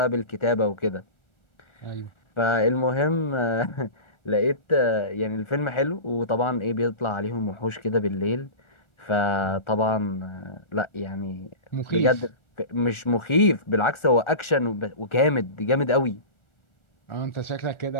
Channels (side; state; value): right; late; 1.4 ms